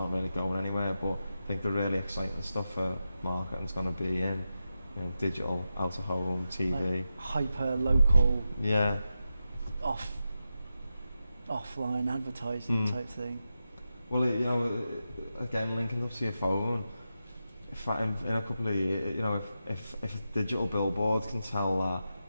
really going anywhere, but I think the really exciting stuff for marketing's going to be in, you know, digital, out of home, TV, like hyper local, yeah, offline advertising type thing. Well, you know, again, linking up to your phone, in a couple of years, you know, if a digital billboard can tell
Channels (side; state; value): both; inverted; correlation -0.89